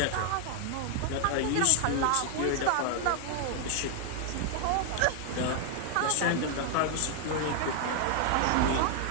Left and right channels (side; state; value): both; different; correlation 0.00